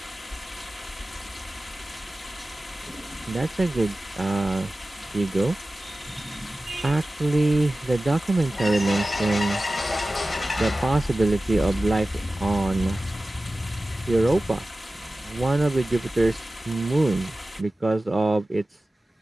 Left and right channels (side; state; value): both; normal; correlation 0.96